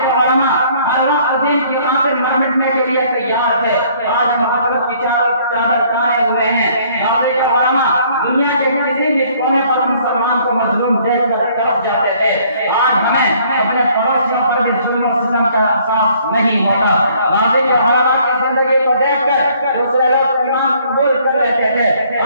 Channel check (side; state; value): both; inverted; correlation -0.61